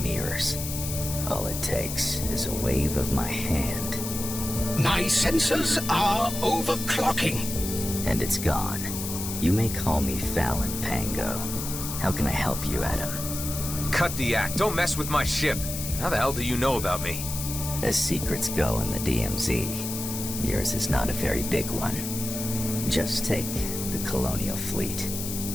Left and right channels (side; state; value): left; noise; hiss, 6 dB below the sound